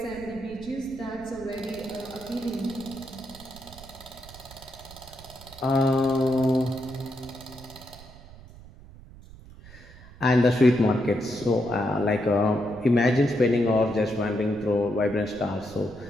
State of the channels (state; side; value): noise; right; rumble, 19 dB below the sound